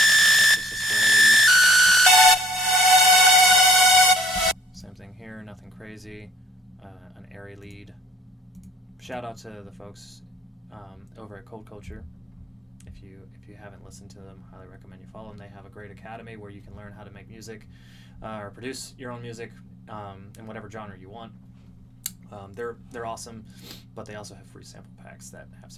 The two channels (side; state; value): both; normal; correlation 0.59